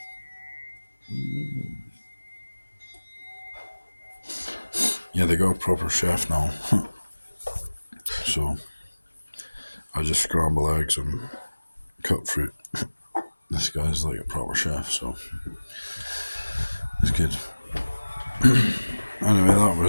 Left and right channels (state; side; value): inverted; both; correlation -1.00